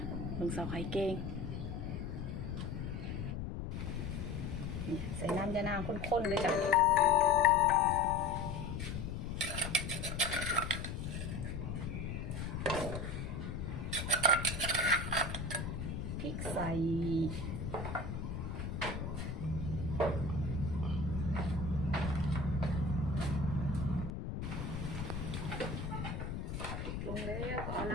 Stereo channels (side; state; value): left; noise; rumble, 4 dB below the sound